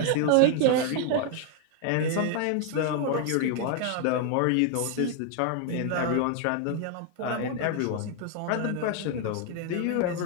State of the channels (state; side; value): different; both; correlation 0.00